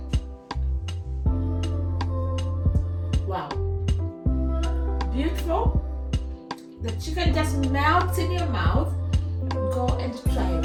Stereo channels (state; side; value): identical; both; correlation 1.00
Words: Wow, beautiful. The chicken just melts in your mouth. Go and try